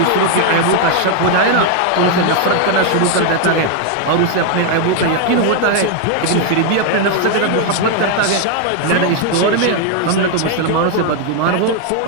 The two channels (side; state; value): both; different; correlation 0.00